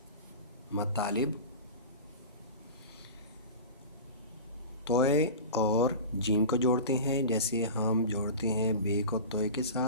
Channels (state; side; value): inverted; both; correlation -0.32